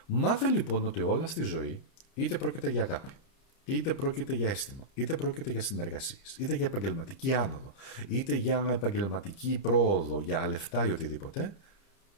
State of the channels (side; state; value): right; late; 30 ms